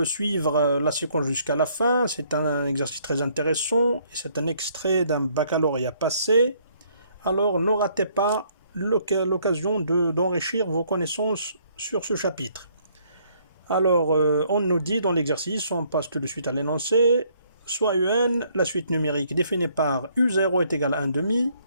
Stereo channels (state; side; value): inverted; both; correlation -0.66